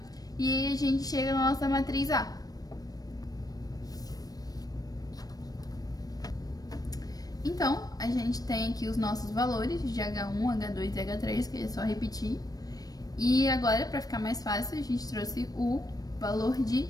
e aí a gente chega na nossa matriz A. Então, a gente tem aqui os nossos valores de H1, H2 e H3, que é só repetir. E agora, para ficar mais fácil, a gente trouxe o valor de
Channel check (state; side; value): late; right; 0.18 ms